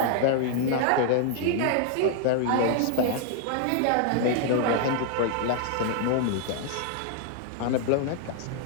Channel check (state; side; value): different; both; correlation 0.00